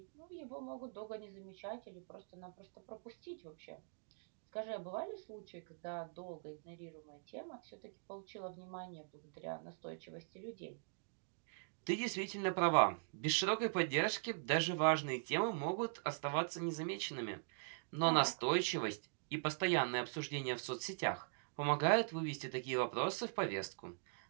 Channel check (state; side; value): silent; left; digital silence